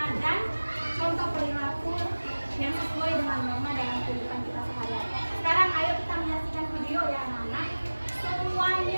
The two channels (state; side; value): inverted; both; correlation -1.00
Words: dan contoh perilaku yang sesuai dengan norma dalam kehidupan kita sehari-hari. Sekarang ayo kita menyaksikan video ya anak-anak.